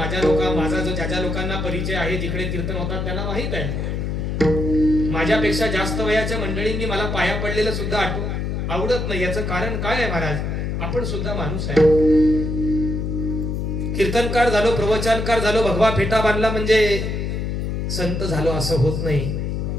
जो ज्या लोकांना परिचय आहे जिकडे कीर्तन होतात त्यांना माहित आहे. माझ्यापेक्षा जास्त वयाच्या मंडळींनी मला पाया पडलेलं सुद्धा आवडत नाही. याचं कारण काय आहे महाराज? आपण सुद्धा माणूस आहे. कीर्तनकार झालो, प्रवचनकार झालो, भगवा फेटा बांधला म्हणजे संत झालो असं होत नाही.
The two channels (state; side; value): noise; left; hum, 2 dB below the sound